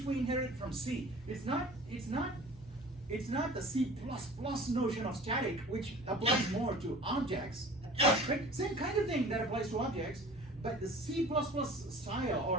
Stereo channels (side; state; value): both; normal; correlation 0.43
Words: inherited from C. It's not the C++ notion of static, which applies more to objects. Right? Same kind of thing that applies to objects, but the C++